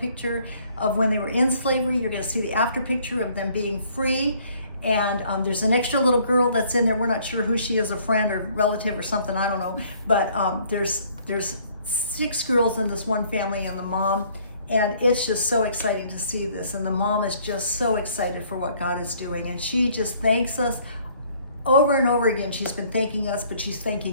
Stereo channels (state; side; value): inverted; both; correlation -0.60